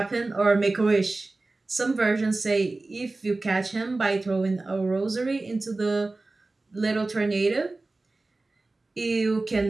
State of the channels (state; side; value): quieter; left; 3.2 dB